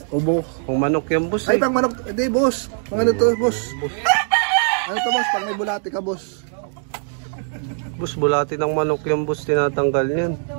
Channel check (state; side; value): silent; left; 65 dB below the other